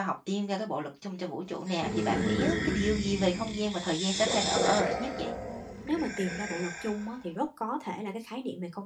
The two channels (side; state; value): both; identical; correlation 1.00